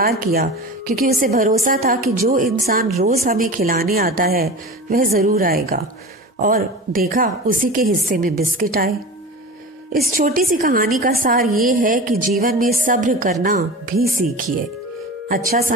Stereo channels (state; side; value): normal; both; correlation 0.32